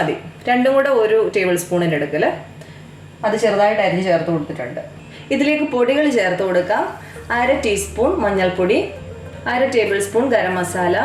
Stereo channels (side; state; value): both; identical; correlation 1.00